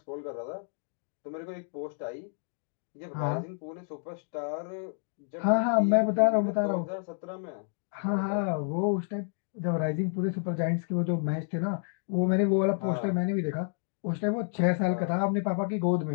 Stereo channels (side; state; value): right; silent; digital silence